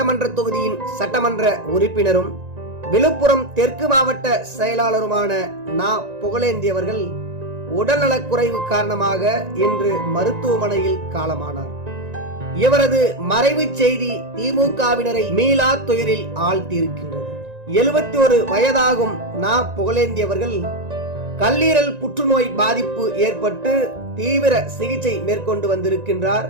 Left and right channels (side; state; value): left; late; 1.9 ms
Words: தொகுதியின் சட்டமன்ற உறுப்பினரும் விழுப்புரம் தெற்கு மாவட்ட செயலாளருமான நா. புகழேந்தி அவர்கள் உடல்நலக்குறைவு காரணமாக இன்று மருத்துவமனையில் காலமானார். இவரது மறைவு செய்தி திமுகவினரை மீளா துயரில் ஆழ்த்தியிருக்கின்றது. 71 வயதாகும் நா. புகழேந்தி அவர்கள் கல்லீரல் புற்றுநோய் பாதிப்பு ஏற்பட்டு தீவிர சிகிச்சை மேற்கொண்டு வந்திருக்கின்றார்.